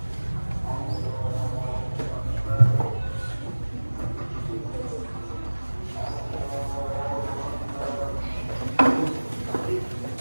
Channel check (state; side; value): inverted; both; correlation -1.00